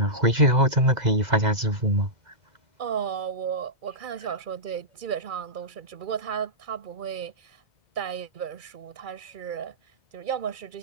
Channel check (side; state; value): left; late; 2.0 ms